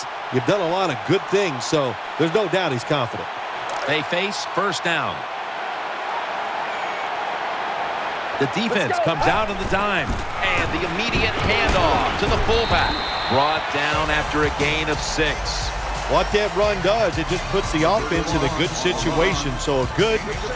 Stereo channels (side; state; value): both; identical; correlation 1.00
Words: you've done a lot of good things. So there's no doubt he's confident. They face first down. The defense comes out on the dime. And the immediate handoff to the fullback. Brought down after a gain of 6. What that run does, it just puts the offense in a good situation. So a good,